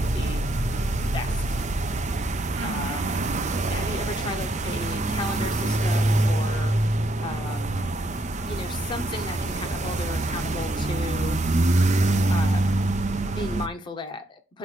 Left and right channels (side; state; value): both; normal; correlation 0.75